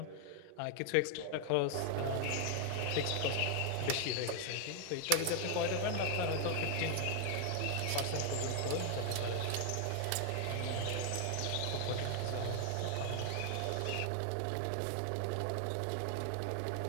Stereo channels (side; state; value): both; different; correlation 0.00